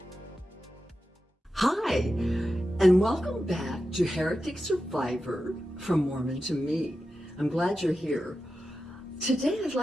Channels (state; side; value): normal; both; correlation 0.91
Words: Hi, and welcome back to Heretic Survivor from Mormon to Me. I'm glad you're here. Today I'd